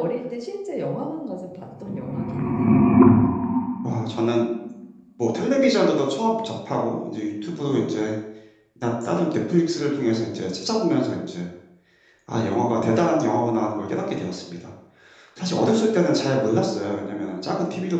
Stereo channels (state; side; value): identical; both; correlation 1.00